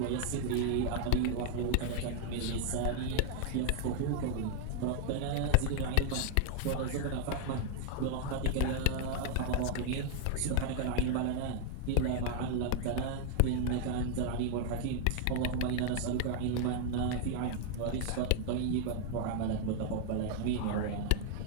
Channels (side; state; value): both; different; correlation 0.00